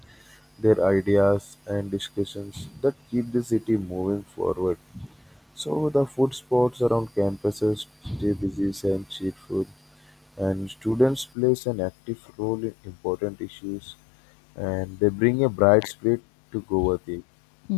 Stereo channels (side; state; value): right; drops out; at 11.3 s